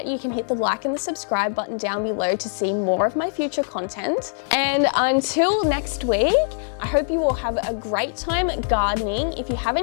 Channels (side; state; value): right; silent; digital silence